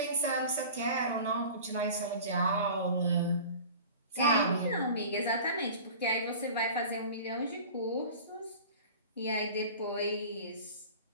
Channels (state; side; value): inverted; both; correlation -0.39